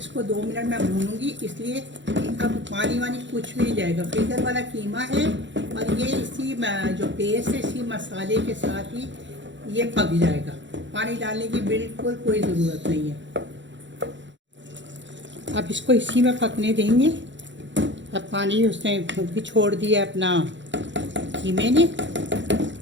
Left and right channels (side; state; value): left; late; 0.54 ms